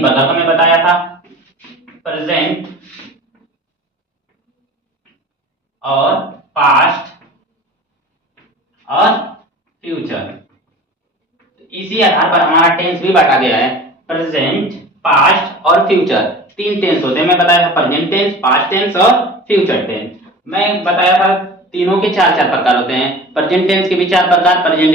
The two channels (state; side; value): normal; both; correlation 0.39